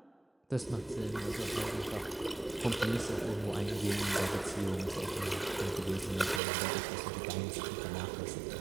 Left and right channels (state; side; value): drops out; left; at 6.4 s